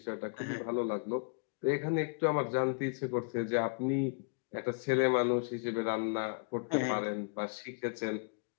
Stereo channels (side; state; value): right; quieter; 37.8 dB